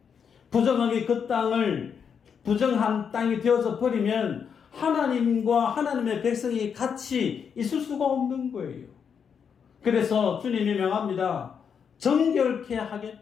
부정하게 그 땅을 부정한 땅이 되어져 버리면 하나님과 하나님의 백성이 같이 있을 수가 없는 거예요. 그래서 주님이 명합니다. 정결케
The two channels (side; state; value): right; quieter; 7.0 dB